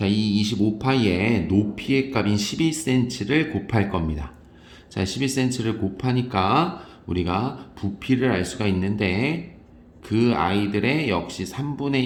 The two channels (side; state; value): both; identical; correlation 1.00